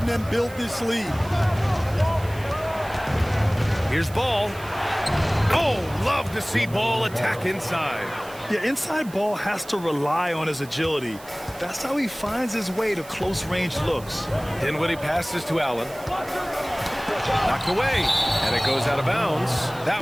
them build this lead. Here's Ball. Oh, love to see Ball attack inside. Yeah, inside Ball has to rely on his agility. That's how he finds his way to close-range looks. Dinwiddie passes to Allen. Knocked away, and it goes out of bounds. That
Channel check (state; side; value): noise; right; hiss, 20 dB below the sound